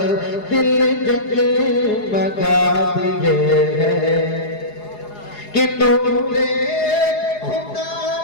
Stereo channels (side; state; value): right; late; 4.8 ms